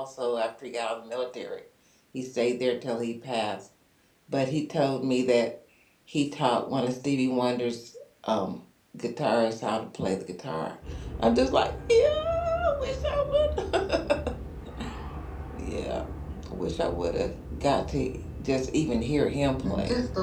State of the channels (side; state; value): both; identical; correlation 1.00